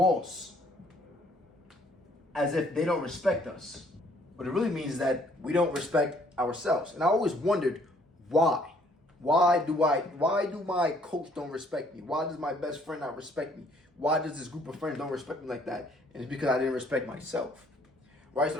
as if they don't respect us, what it really means is that we don't respect ourselves. And I always wondered why. Why do my coach don't respect me? Why does my best friend not respect me? Why does this group of friends don't respect me like that? And it's because I didn't respect myself, right? So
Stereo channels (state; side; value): normal; both; correlation 0.63